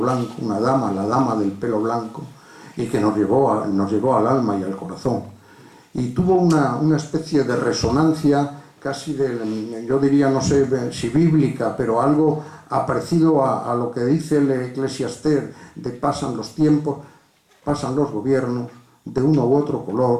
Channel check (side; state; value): both; identical; correlation 1.00